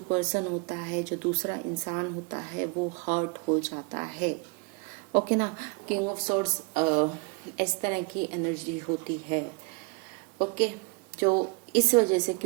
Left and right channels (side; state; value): left; quieter; 32.2 dB